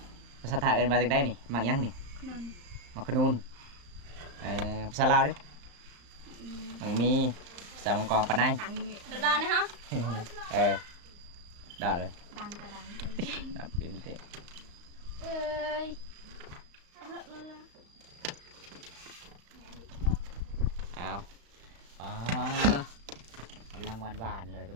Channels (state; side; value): late; left; 35 ms